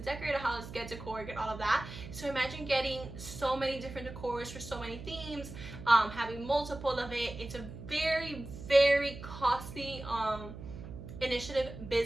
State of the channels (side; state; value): right; noise; hum, 12 dB below the sound